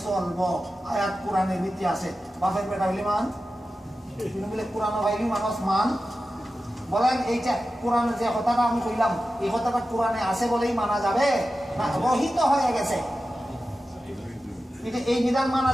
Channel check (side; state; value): both; normal; correlation 0.93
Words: চলবো। আয়াত কোরআনের ভিত্তি আছে। বাপের বেটা হইলে মান, বলে কোরআন ভাইলি মানুষ মান। বলেন এইটা কোরআনে যে কথাটা আমি কইলাম এই কথাটা কোরআনে আছে বলেই মানা যাবে না রহিত হয়ে গেছে? এটা এই বিধান মানা